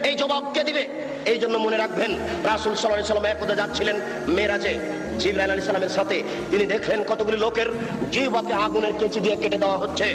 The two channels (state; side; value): identical; both; correlation 1.00